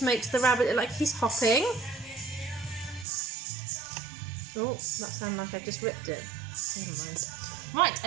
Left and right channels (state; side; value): drops out; left; at 3.1 s